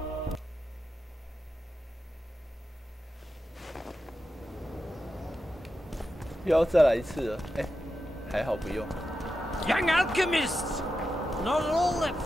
又要再来一次了，哎，还好不用。Young alchemists, not all that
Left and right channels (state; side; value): normal; both; correlation 0.90